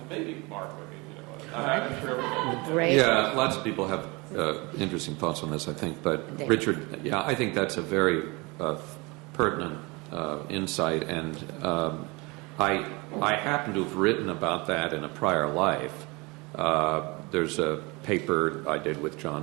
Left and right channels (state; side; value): quieter; left; 26.3 dB